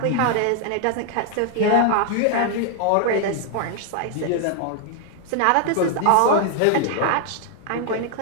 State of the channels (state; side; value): different; both; correlation 0.00